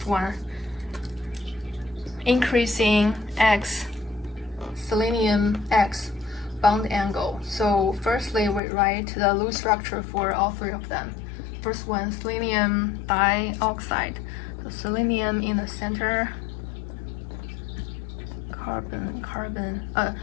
one, increasing X, selenium X bond angle. So firstly, we write the Lewis structure for all 3 of them. First one, selenium dioxide. So selenium in the center,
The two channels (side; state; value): right; drops out; at 8.6 s